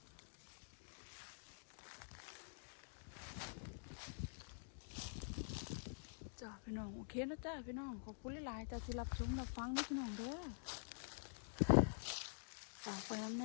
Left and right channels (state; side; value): silent; right; digital silence